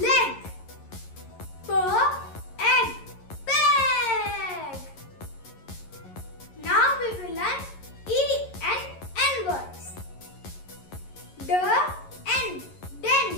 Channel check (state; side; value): late; right; 11 ms